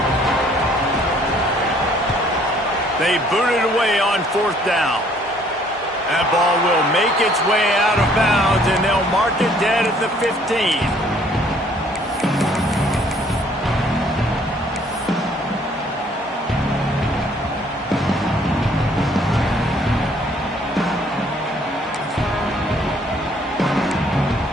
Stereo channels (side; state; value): both; normal; correlation 0.61